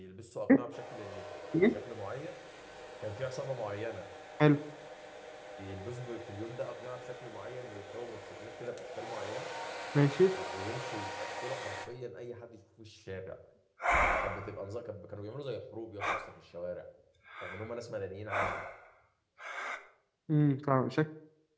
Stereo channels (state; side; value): identical; both; correlation 1.00